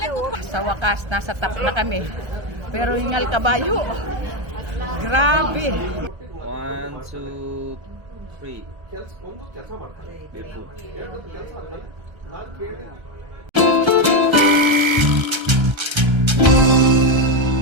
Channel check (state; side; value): late; left; 1.3 ms